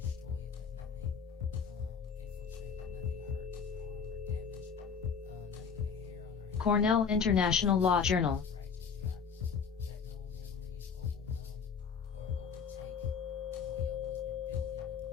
Cornell International Law Journal.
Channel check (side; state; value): right; quieter; 6.2 dB